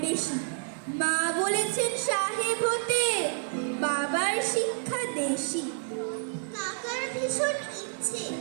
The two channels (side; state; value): left; silent; 58 dB below the other